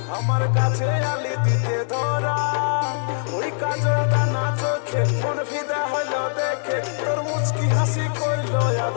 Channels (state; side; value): silent; right; digital silence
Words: আমার কাছে আলি দিতে ধরা ওই কাজলটা না চোখে মন ফিদা হইল দেখে তোর মুচকি হাসি করলো ইয়াদ